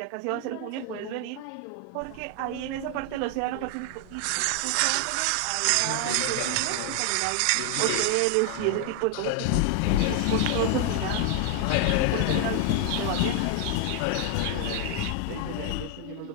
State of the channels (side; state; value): both; different; correlation 0.00